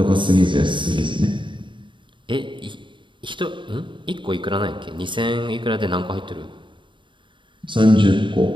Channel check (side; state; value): left; late; 0.23 ms